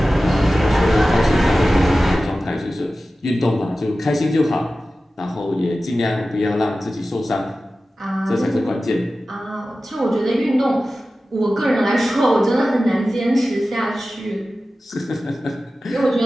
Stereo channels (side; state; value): both; normal; correlation 0.95